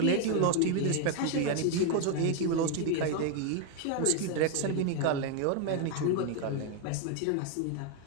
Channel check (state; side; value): different; both; correlation 0.01